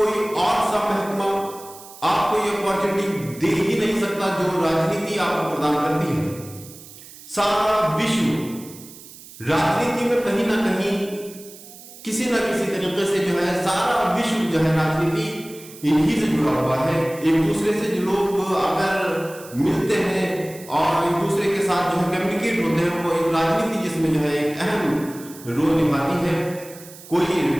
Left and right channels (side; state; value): right; noise; hiss, 18 dB below the sound